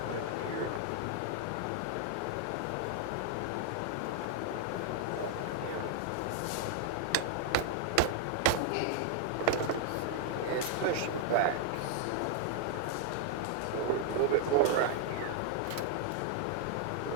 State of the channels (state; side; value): different; both; correlation 0.00